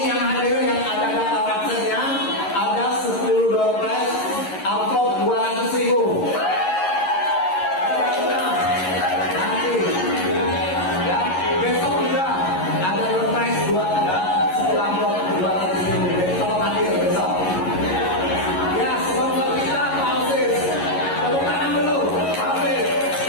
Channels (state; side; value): late; right; 11 ms